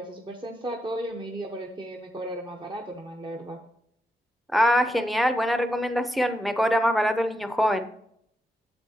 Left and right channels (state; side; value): normal; both; correlation 0.84